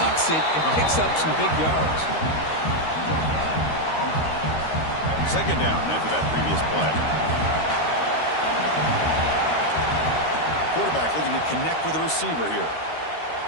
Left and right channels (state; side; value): late; right; 13 ms